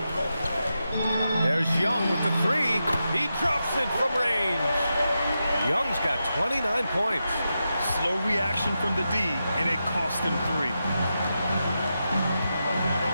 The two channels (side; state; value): both; inverted; correlation -0.88